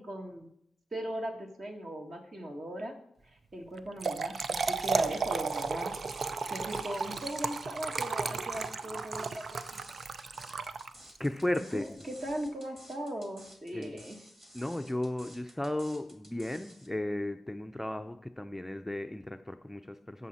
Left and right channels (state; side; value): normal; both; correlation 0.90